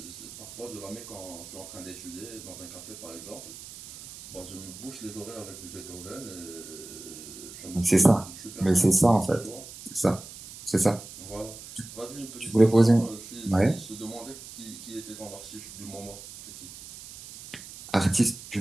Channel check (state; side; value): noise; right; hiss, 15 dB below the sound